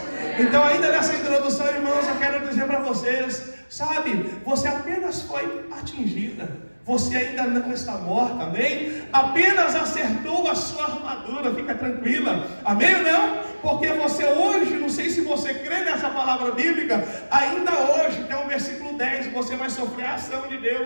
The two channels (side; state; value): both; inverted; correlation -1.00